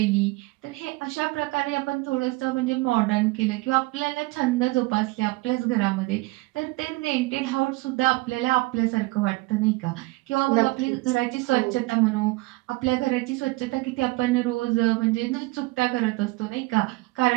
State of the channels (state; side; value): quieter; left; 22.5 dB